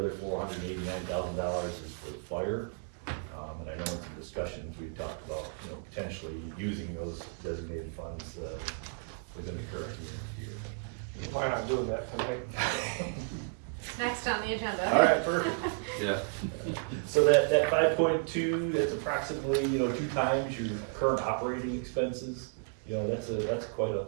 $489,000 is for fire. And I know in some discussions, we've talked about, potentially using those designated funds, within the current year. Why not do that tonight? Next on the agenda. All right, perfect. Yeah. So that 5.2, that's approximately, 2 times your current operating expenses. That's quite a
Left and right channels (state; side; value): silent; left; 56 dB below the other